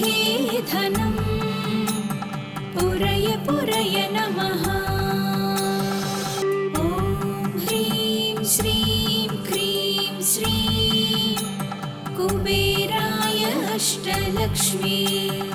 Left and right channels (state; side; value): identical; both; correlation 1.00